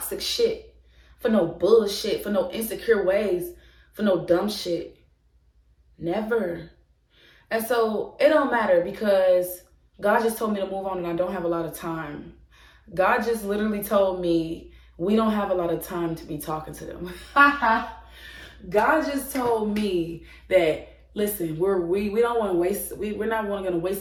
shit, for no bullshit, for no insecure ways, for no dumb shit. Never. And so it don't matter, because God just told me to move on and I don't have a lot of time. God just literally told me we don't have a lot of time to be talking to them. God just told me that, listen, we don't want to waste, we're not going to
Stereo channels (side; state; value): both; identical; correlation 1.00